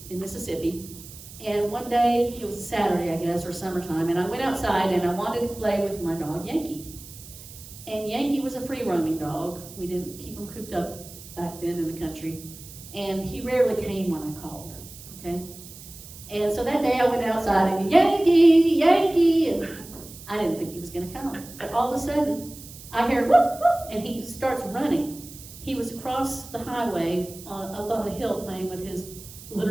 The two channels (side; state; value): right; noise; hiss, 16 dB below the sound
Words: in Mississippi, and one day, it was Saturday, I guess, or summertime, and I went outside and I wanted to play with my dog, Yankee. And Yankee was a free-roaming dog. We didn't keep him cooped up back then in the country, and he rarely came when I called. okay? And so that day I went outside and Yankee, Yankee, and I didn't think he was gonna come. But all of a sudden, I hear whoop, whoop, and he starts running. He was across the highway up on a hill playing with his